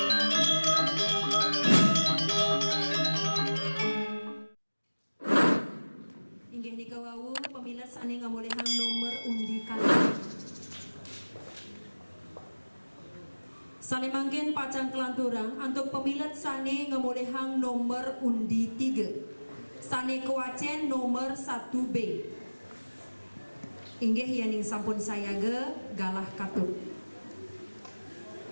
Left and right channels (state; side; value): inverted; both; correlation -1.00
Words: nika wau pemilat sane ngamolehang nomor undi kali. Sane mangkin pacang kelanturang untuk pemilat sane ngamolehang nomor undi 3. Sane kewacen nomor 1B. Inggih yaning sampun sayaga galah katut.